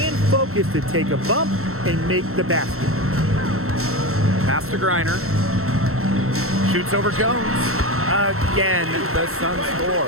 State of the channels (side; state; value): left; late; 0.63 ms